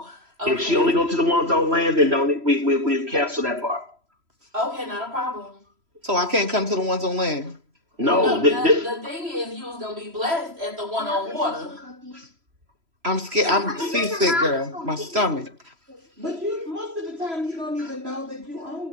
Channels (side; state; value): left; late; 3.0 ms